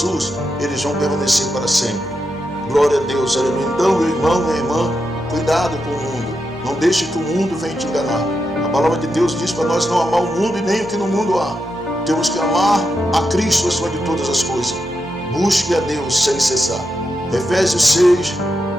eles vão permanecer para sempre. Glória a Deus, aleluia. Então, meu irmão, minha irmã, cuidado com o mundo. Não deixe que o mundo venha te enganar. A palavra de Deus diz para nós não amar o mundo e nem o que no mundo há. Temos que amar a Cristo acima de todas as coisas. Busque a Deus sem cessar. Efésios 6,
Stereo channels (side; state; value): both; normal; correlation 0.86